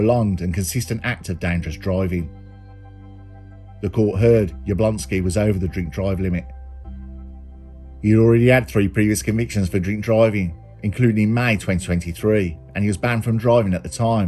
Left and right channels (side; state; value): both; identical; correlation 1.00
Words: and consistent act of dangerous driving. The court heard Jablonski was over the drink-drive limit. He had already had 3 previous convictions for drink driving, including in May 2023, and he was banned from driving at the